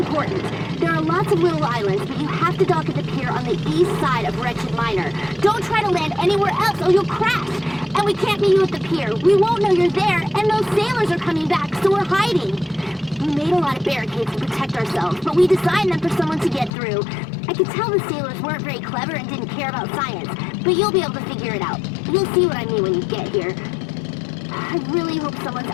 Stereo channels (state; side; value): drops out; right; at 16.7 s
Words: There are lots of little islands, but you have to dock at the pier on the east side of Wretched Minor. Don't try to land anywhere else or you'll crash. And we can't meet you at the pier. We won't know you're there, and those sailors are coming back, so we're hiding. We made a lot of barricades to protect ourselves, but we designed them for someone to get through. I could tell the sailors weren't very clever and didn't care about science, but you'll be able to figure it out. You'll see what I mean when you get here. I really hope someone's